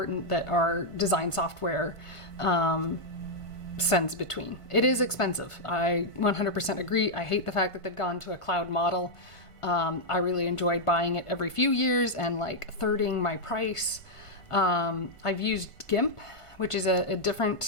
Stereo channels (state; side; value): late; right; 1.5 ms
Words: that our design software sends between. It is expensive. I 100% agree. I hate the fact that they've gone to a cloud model. I really enjoyed buying it every few years and like thirding my price. I've used GIMP, which is a